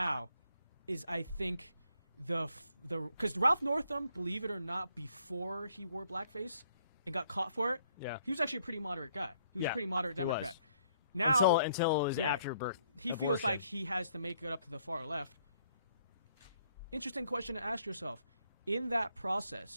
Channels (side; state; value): both; inverted; correlation -0.68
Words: is, I think, because Ralph Northam, believe it or not, before he wore blackface and got caught for it, he was actually a pretty moderate guy. He was a pretty moderate Democrat. Now, until it was after birth. He feels like he has to make it up to the far left. Interesting question to ask yourself. In that